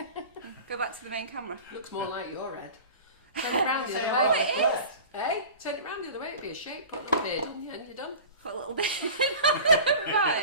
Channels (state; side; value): inverted; both; correlation -0.37